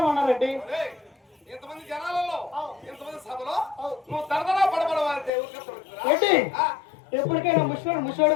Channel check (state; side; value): drops out; right; at 5.3 s